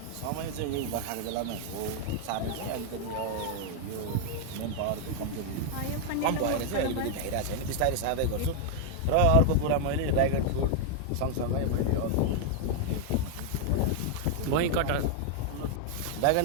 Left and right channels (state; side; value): different; both; correlation 0.00